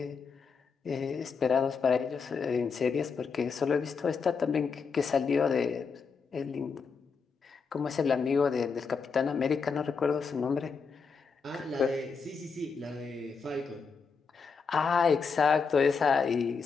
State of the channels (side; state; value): right; quieter; 5.4 dB